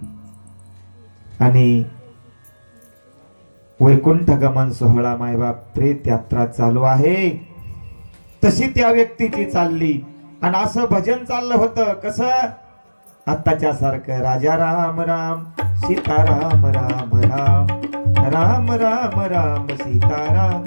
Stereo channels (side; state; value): both; inverted; correlation -1.00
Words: आणि वैकुंठ गमन सोहळा मायबाप प्रेत यात्रा चालू आहे, तशी त्या व्यक्तीची चालली. आणि असं भजन चाललं होतं कसं, आत्ताच्या सारखं राजा राम राम सीताराम राम राम, राम राम राम सीताराम.